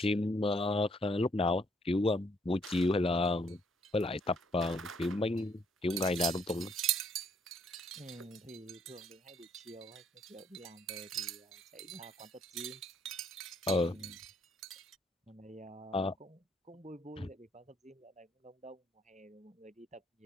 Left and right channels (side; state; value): both; normal; correlation 0.68